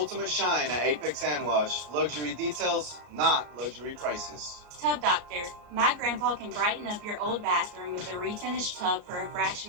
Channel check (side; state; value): left; late; 34 ms